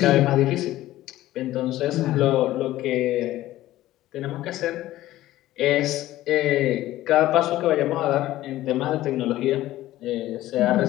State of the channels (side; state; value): right; quieter; 15.3 dB